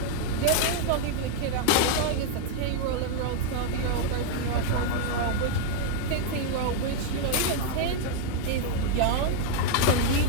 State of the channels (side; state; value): both; different; correlation 0.00